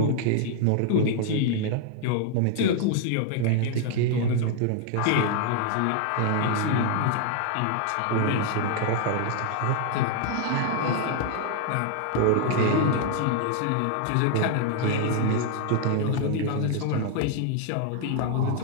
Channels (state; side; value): different; both; correlation 0.00